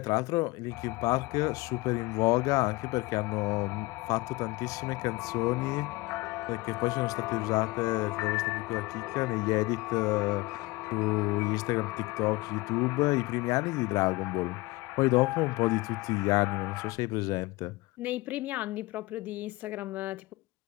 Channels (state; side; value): quieter; right; 21.6 dB